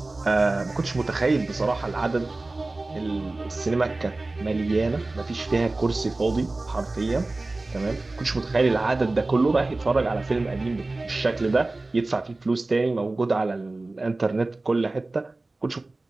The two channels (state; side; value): quieter; left; 3.1 dB